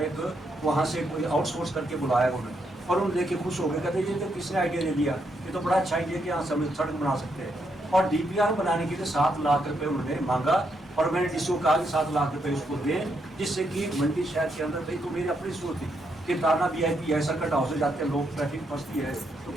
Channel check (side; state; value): both; normal; correlation 0.78